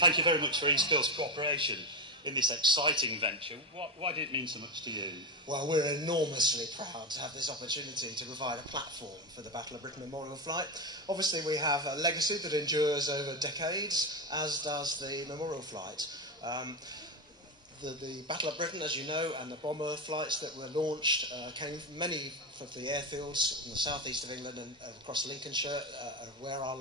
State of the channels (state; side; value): normal; both; correlation 0.14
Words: you very much for East Coast cooperation in this exciting venture. Why did it mean so much to you? Well, we're enormously proud to have this opportunity to provide a platform for the Battle of Britain Memorial Flight. Obviously, we have a legacy that endures over decades, as does the Memorial Flight. The Battle of Britain, as you know, and the bomber flights that were launched came from many of the airfields in the southeast of England and across Lincolnshire, where our